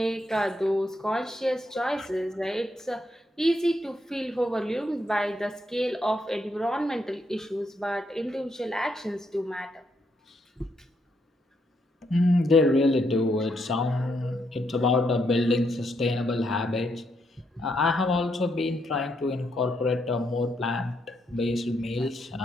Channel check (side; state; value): both; normal; correlation 0.77